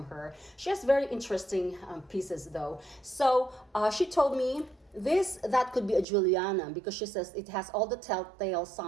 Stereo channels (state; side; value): drops out; left; at 6.1 s